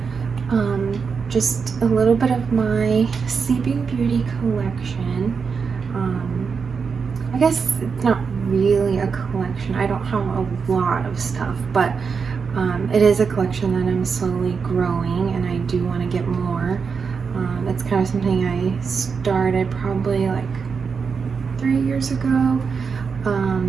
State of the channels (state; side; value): quieter; left; 5.6 dB